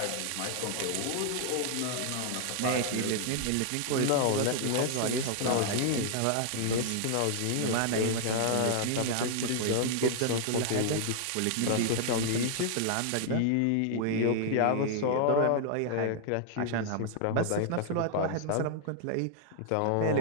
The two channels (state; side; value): different; both; correlation 0.00